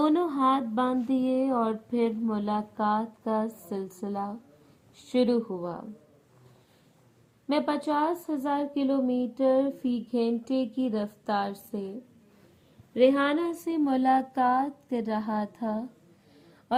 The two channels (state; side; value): identical; both; correlation 1.00